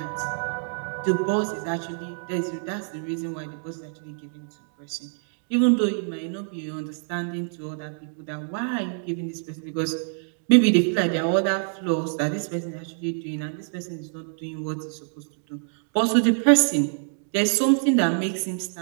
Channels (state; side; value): silent; left; digital silence